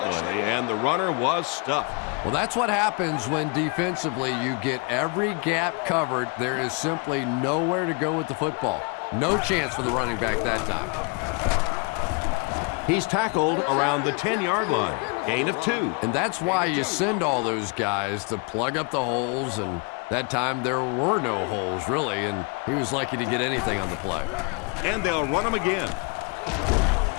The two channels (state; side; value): quieter; right; 30.9 dB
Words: and the runner was stuffed. Well, that's what happens when defensively you get every gap covered. There is simply nowhere to go with the football. No chance for the running back that time. He's tackled around the 10-yard line. Gain of 2. And that's why you send all those guys to plug up the holes, and that time there were no holes, really, and he was lucky to get anything on the play. And they'll run him again.